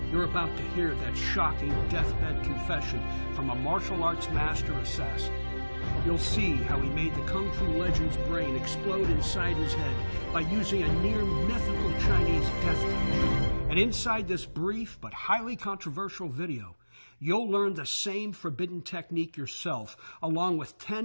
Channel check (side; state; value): both; inverted; correlation -1.00